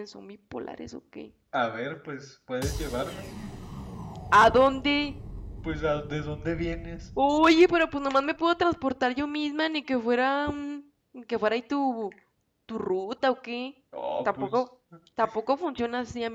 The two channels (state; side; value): identical; both; correlation 1.00